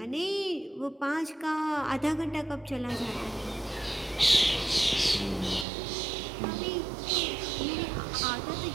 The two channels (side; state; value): left; drops out; at 5.7 s